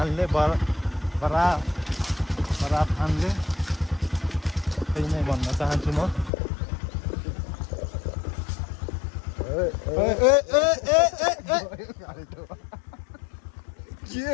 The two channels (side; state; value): right; drops out; at 6.3 s